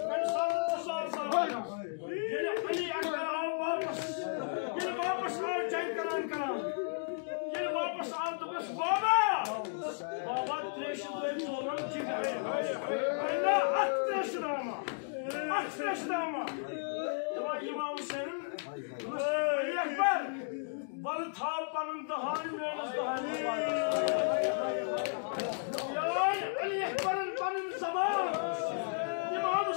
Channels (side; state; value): right; silent; digital silence